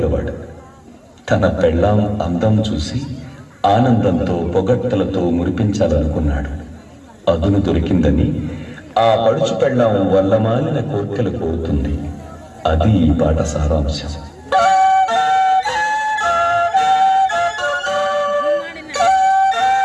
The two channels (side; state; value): both; identical; correlation 1.00